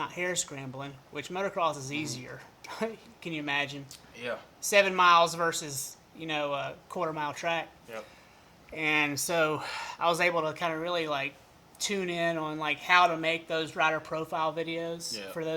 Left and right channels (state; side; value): identical; both; correlation 1.00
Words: hair scrambling, which motocross is easier. Can you imagine? Yeah. 7 miles versus, a quarter-mile track. Yep. And so I was able to kind of really, tune in on, how to make those rider profile videos for